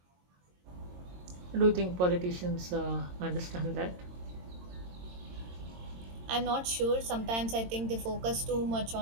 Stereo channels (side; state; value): left; late; 22 ms